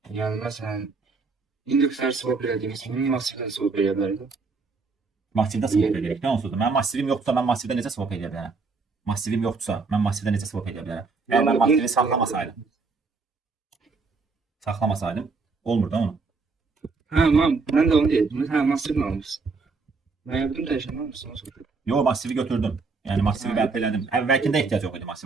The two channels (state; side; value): quieter; left; 4.3 dB